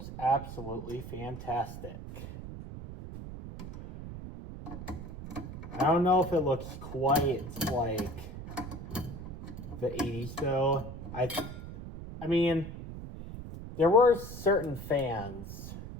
absolutely fantastic. I don't know if it looks quite like the 80s though. I mean, there were certain fans.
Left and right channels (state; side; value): noise; right; rumble, 10 dB below the sound